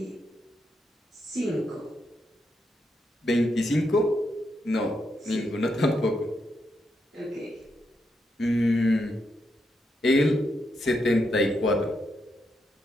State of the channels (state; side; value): normal; both; correlation 0.82